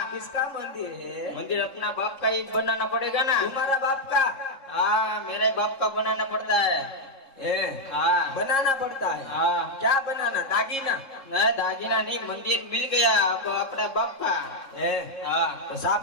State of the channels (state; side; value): late; right; 3.6 ms